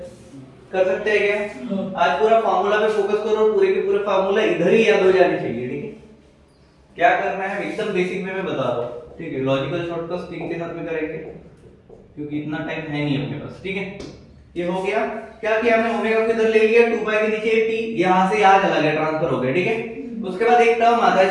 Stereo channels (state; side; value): identical; both; correlation 1.00